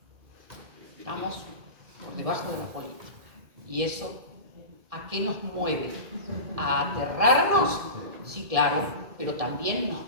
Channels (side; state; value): left; late; 1.7 ms